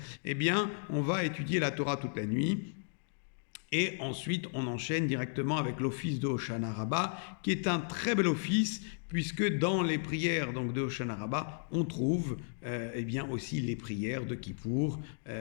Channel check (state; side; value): silent; right; digital silence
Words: eh bien, on va étudier la Torah toute la nuit. Et ensuite, on enchaîne directement avec l'office de Hoshana Rabbah, qui est un très bel office, puisque dans les prières donc, de Hoshana Rabbah, on trouve eh bien aussi les prières de Kippour